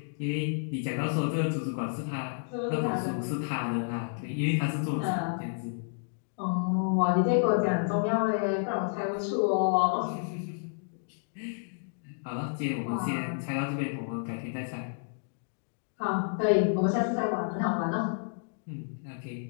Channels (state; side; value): silent; right; digital silence